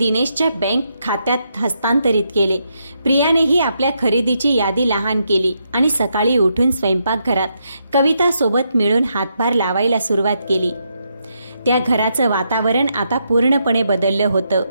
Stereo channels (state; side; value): inverted; both; correlation -0.80